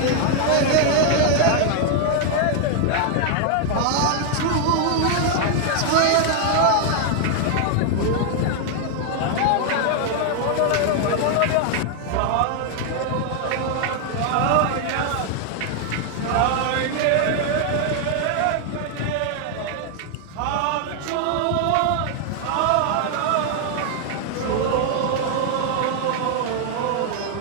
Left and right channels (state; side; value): different; both; correlation 0.00